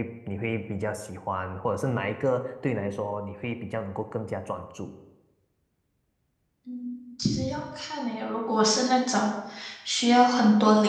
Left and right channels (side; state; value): both; identical; correlation 1.00